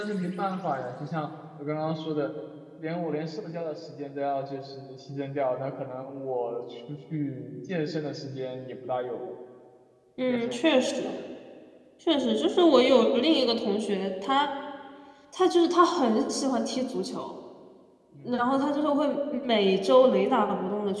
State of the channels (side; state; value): both; identical; correlation 1.00